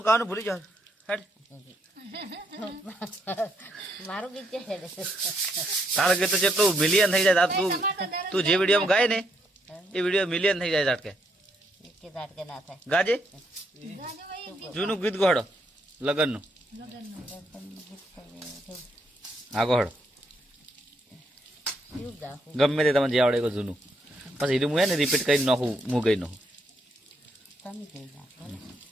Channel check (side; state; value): both; normal; correlation 0.75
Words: કાવાનું ભૂલી જાવ હેડ। મારું ગીત છે તારું ગીત તો જેટલું મિલિયન થઈ જાય તું જે વિડીયોમાં ગાય ને એ વિડીયો મિલિયન થઈ જાય ઝાટકે ના થાય। ગાજે જૂનું ગીત ગોહડો લગનનું આ ગોહડો ગમે તે તમે જે આવડે એ જૂનું પછી એનું હું ને રિપીટ કરી નાખું હું ગઈ નાખું।